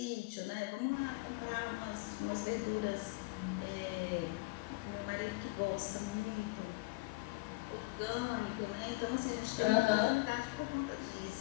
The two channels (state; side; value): quieter; right; 24.2 dB